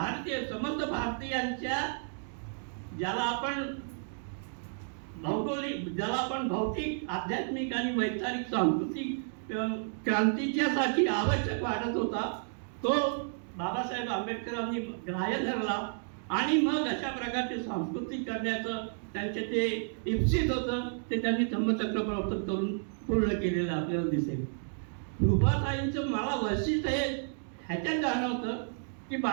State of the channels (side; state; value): left; silent; digital silence